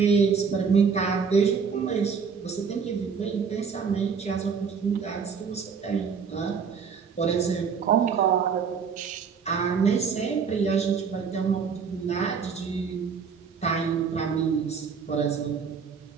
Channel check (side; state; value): left; quieter; 6.1 dB